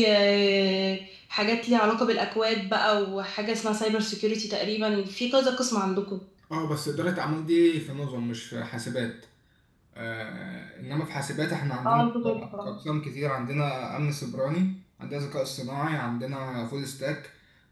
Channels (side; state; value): both; identical; correlation 1.00